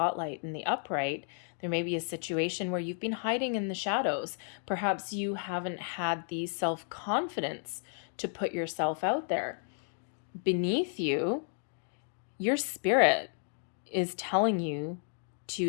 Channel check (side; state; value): right; silent; 56 dB below the other